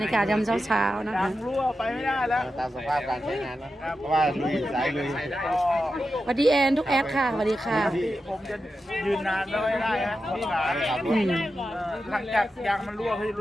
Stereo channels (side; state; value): both; normal; correlation 0.90